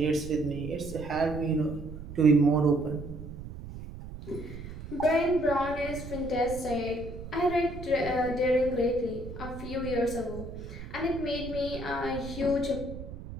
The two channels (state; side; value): noise; right; rumble, 11 dB below the sound